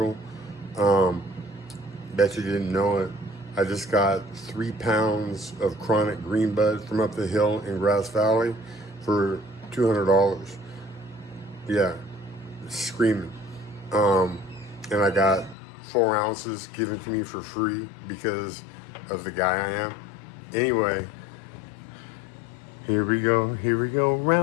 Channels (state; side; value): drops out; right; at 15.6 s